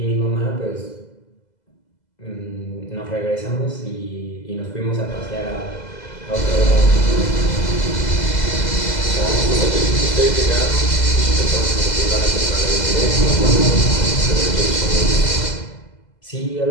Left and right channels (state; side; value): late; right; 2.0 ms